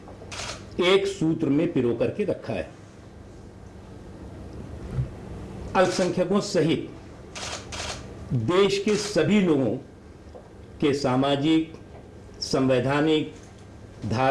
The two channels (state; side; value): identical; both; correlation 1.00